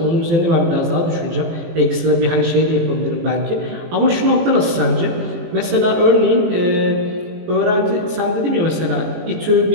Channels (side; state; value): left; late; 18 ms